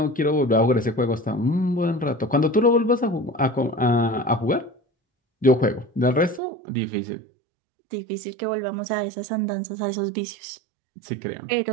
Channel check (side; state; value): left; drops out; at 6.4 s